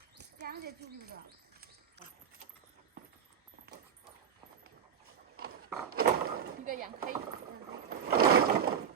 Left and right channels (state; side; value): quieter; left; 7.8 dB